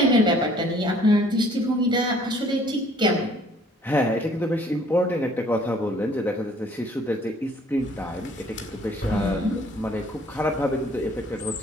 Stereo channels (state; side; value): normal; both; correlation 0.58